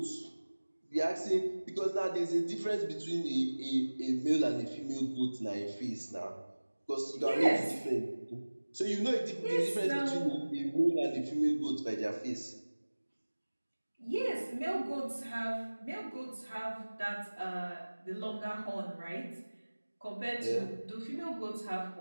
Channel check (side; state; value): both; inverted; correlation -1.00